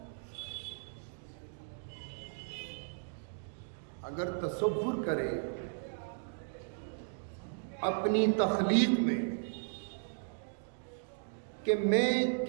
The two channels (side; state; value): left; silent; digital silence